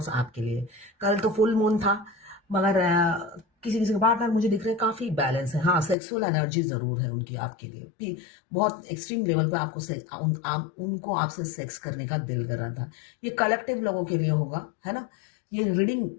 आपके लिए। कल तो फुल मून था, मगर किसी किसी के पार्टनर मुझे दिख रहे हैं काफी बैलेंस है। हाँ, सेक्सुअल एनर्जी जरूर है उनकी आपके लिए, बहुत एक्सट्रीम लेवल पे उनको आपसे सेक्स करने का दिल कर रहा था। ये कलेक्टिव लोगों के लिए होगा, है ना। ये रीडिंग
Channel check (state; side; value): drops out; right; at 6.0 s